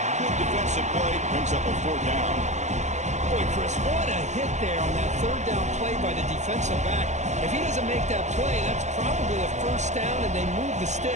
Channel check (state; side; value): late; left; 0.34 ms